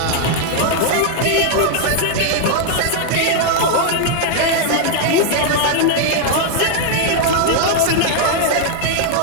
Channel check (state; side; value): different; both; correlation 0.00